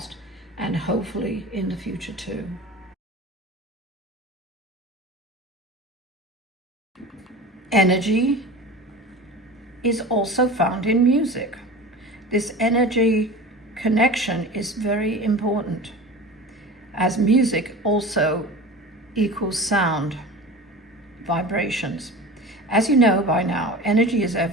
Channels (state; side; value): normal; both; correlation 0.34